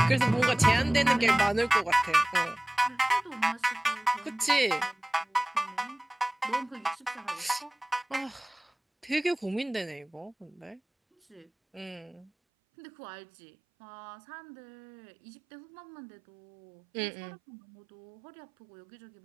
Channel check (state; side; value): drops out; left; at 12.3 s